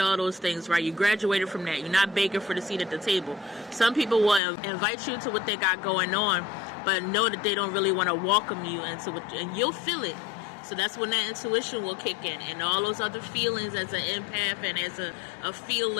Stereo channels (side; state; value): right; drops out; at 4.4 s